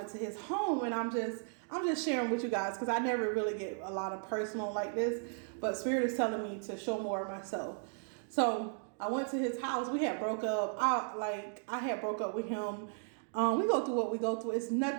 to his home, and I'm just sharing with you guys, because I never really get a lot of personal like this, but Spirit is telling me to show more of myself. So I went to his house. We had broke up. I had broke up with him. We go through what we go through. It's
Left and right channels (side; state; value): left; silent; 54 dB below the other